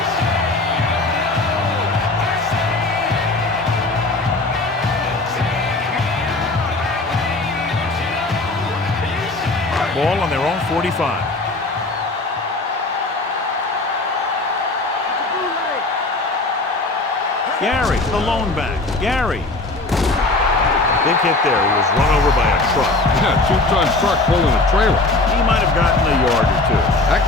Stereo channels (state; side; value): quieter; right; 3.1 dB